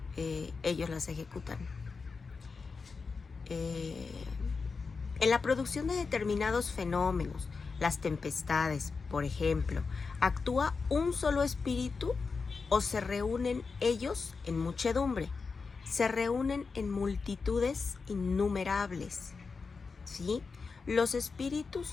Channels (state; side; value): quieter; right; 4.7 dB